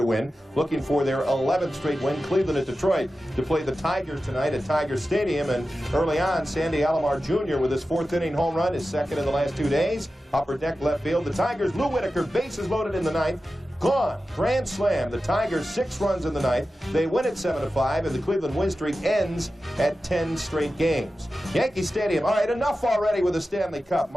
win, looking for their 11th straight win. Cleveland at Detroit to play the Tigers tonight at Tiger Stadium. And early on, Sandy Alomar Jr. with his 4th inning home run, his 2nd in the last 2 days. Upper deck left field. The Tigers, Lou Whitaker, bases loaded in the 9th. Gone. Grand slam. The Tigers 6 runs in the 9th. They win at 7-5, and the Cleveland win streak ends at 10 straight games. Yankee Stadium. All right, enough already with the Stanley Cup.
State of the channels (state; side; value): normal; both; correlation 0.93